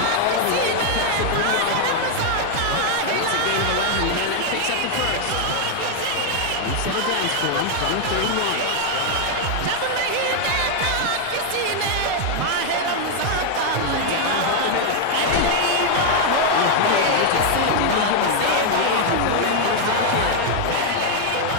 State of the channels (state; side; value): different; both; correlation 0.00